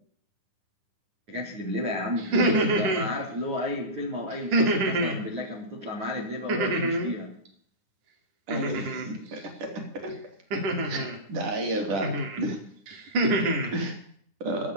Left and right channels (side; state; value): left; late; 9.9 ms